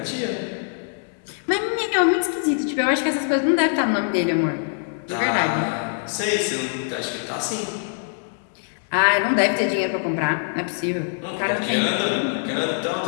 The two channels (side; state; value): right; silent; digital silence